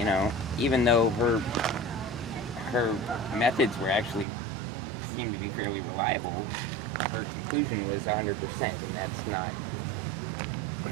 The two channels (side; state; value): left; drops out; at 4.2 s